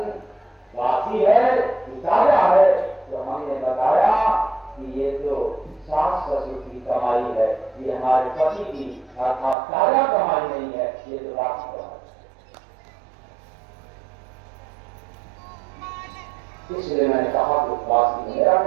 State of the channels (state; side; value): drops out; left; at 9.6 s